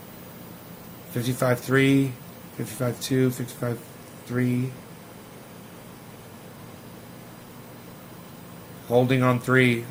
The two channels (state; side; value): identical; both; correlation 1.00